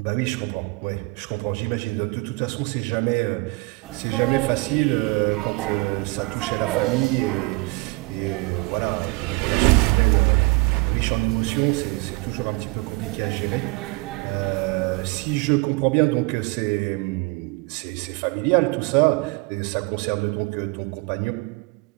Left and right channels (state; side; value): quieter; left; 26.1 dB